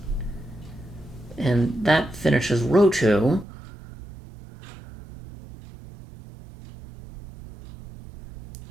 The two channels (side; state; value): left; drops out; at 3.5 s